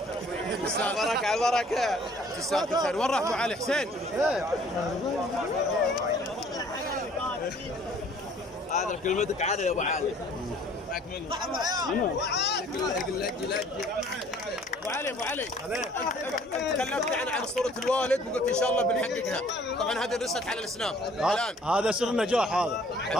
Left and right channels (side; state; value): both; normal; correlation 0.56